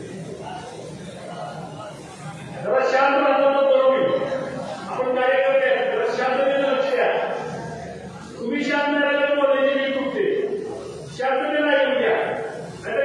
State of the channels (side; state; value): both; identical; correlation 1.00